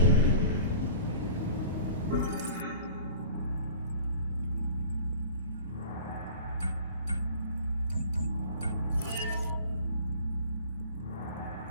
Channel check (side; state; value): both; inverted; correlation -0.44